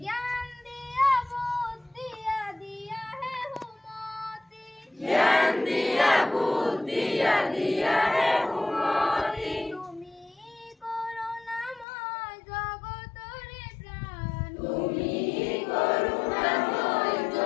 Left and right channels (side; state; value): right; drops out; at 11.9 s